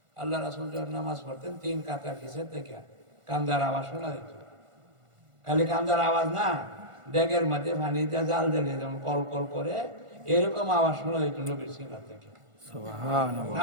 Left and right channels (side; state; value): left; late; 1.5 ms